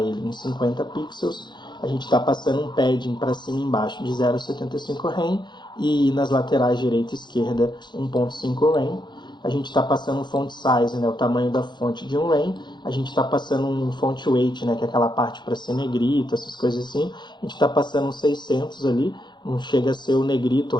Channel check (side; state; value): right; late; 0.21 ms